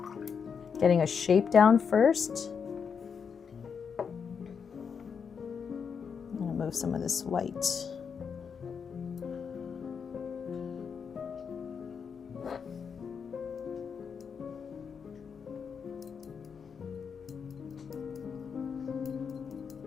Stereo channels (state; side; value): quieter; right; 6.4 dB